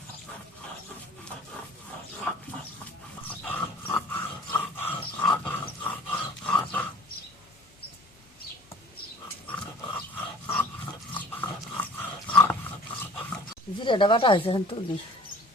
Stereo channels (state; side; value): normal; both; correlation 0.49